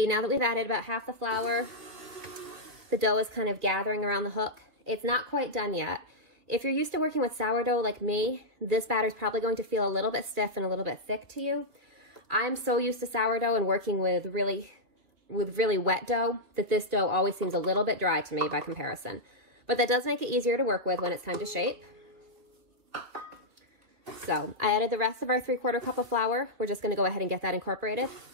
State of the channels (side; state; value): left; late; 3.0 ms